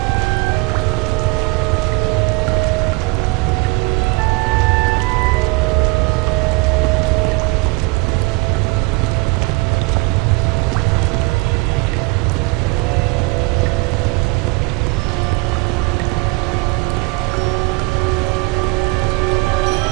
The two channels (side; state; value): left; quieter; 26.3 dB